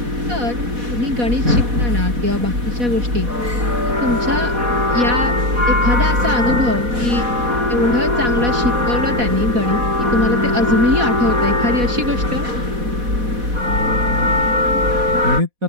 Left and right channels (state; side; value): late; left; 4.1 ms